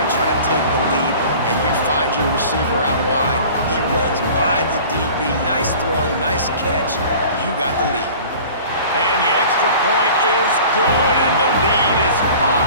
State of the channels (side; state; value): both; inverted; correlation -0.43